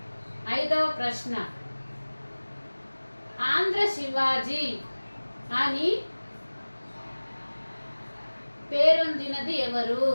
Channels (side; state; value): both; inverted; correlation -1.00